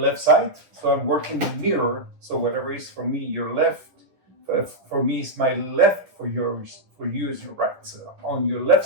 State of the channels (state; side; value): late; left; 10 ms